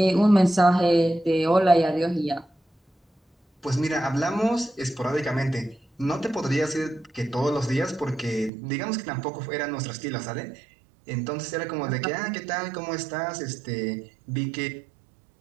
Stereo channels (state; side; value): drops out; left; at 8.5 s